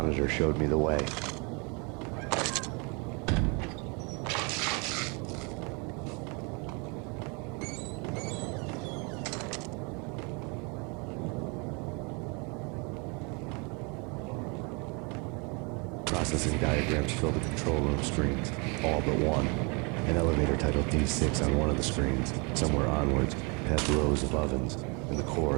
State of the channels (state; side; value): quieter; left; 31.8 dB